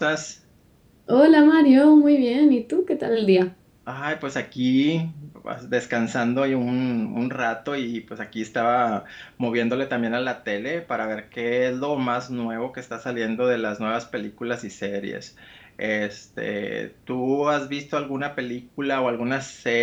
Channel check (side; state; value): both; identical; correlation 1.00